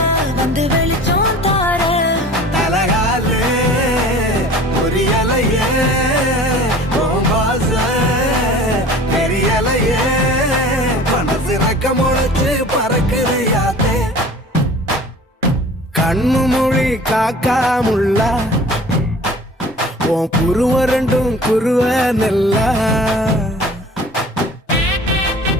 வந்து வெளிச்சம் தார தலகாலே பொரியலையே ஓம்பாச பெரியலையே மனசு ரக்க முளைச்சு பறக்குது யாத்தே கண்ணு மொழி காக்காமுள்ள உன் குருவ ரெண்டும் குருவ நெல்லா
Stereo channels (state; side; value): normal; both; correlation 0.44